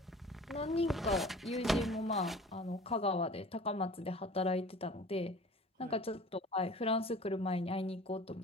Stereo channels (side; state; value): both; normal; correlation 0.43